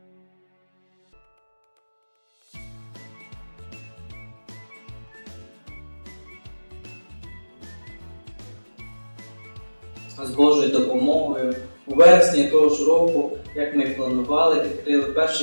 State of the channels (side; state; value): both; inverted; correlation -1.00